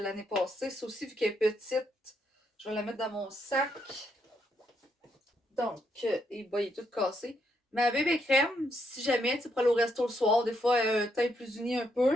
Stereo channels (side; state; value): both; normal; correlation 0.77